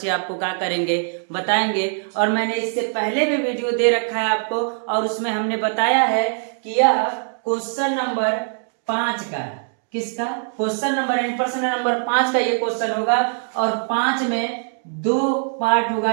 आपको क्या करेंगे बताएंगे। और मैंने इससे पहले भी वीडियो दे रखा है आपको, और उसमें हमने बताया है कि यह क्वेश्चन नंबर 5 का, किसका क्वेश्चन नंबर यानी प्रश्न नंबर 5 का ये क्वेश्चन होगा। और 5 में 2 पार्ट होगा,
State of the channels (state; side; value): silent; left; 56 dB below the other